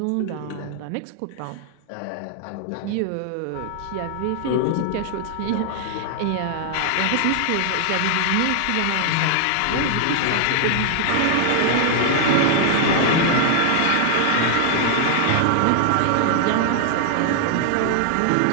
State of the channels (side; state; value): both; different; correlation 0.00